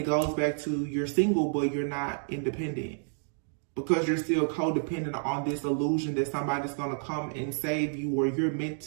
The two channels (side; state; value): left; silent; digital silence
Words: goes back to you're single, but you're not independent because you're still codependent on this illusion that somebody's going to come and save you, or you're meant